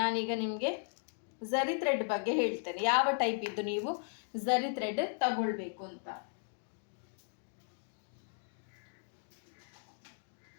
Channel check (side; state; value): right; silent; digital silence